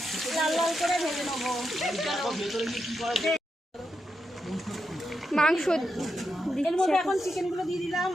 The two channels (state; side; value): normal; both; correlation 0.85